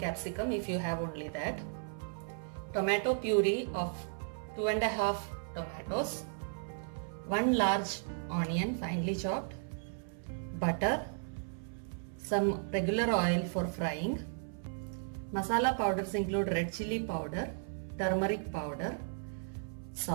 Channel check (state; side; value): silent; left; 54 dB below the other